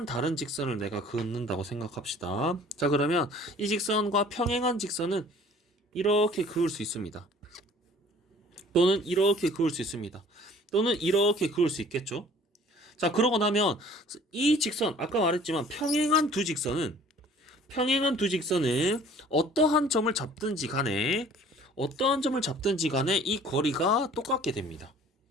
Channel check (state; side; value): normal; both; correlation 0.51